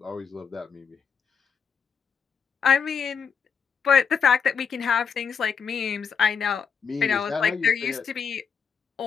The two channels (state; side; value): quieter; right; 6.4 dB